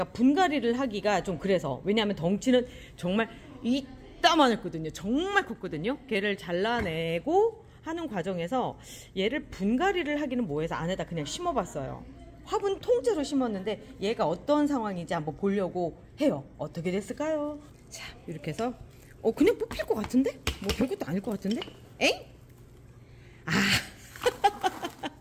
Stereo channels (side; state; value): both; identical; correlation 1.00